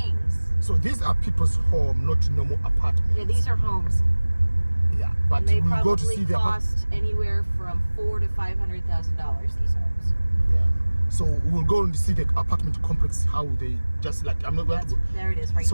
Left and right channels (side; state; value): both; inverted; correlation -1.00